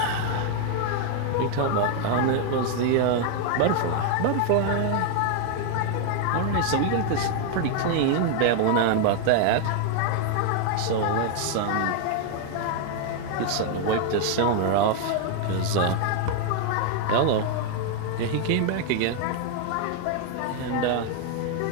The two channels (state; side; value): different; both; correlation 0.00